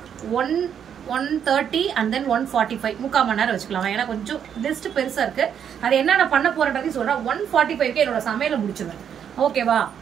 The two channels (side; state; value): left; quieter; 8.4 dB